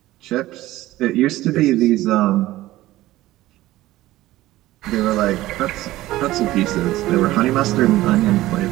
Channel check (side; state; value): left; quieter; 16.4 dB